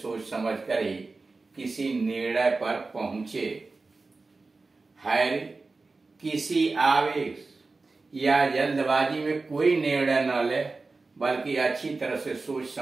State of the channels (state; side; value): quieter; left; 3.8 dB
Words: समझ कर ही किसी निर्णय पर पहुंचे। हैरी किसी आवेश या जल्दबाजी में कोई निर्णय न ले, बल्कि अच्छी तरह से सोच